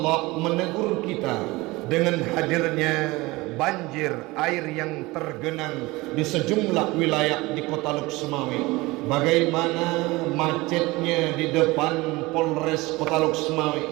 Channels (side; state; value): left; quieter; 21.6 dB